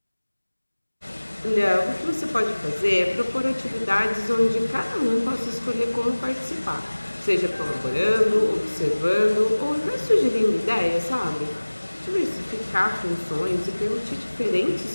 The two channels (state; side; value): inverted; both; correlation -1.00